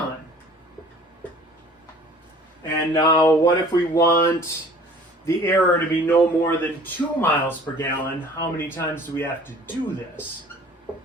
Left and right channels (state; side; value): normal; both; correlation 0.49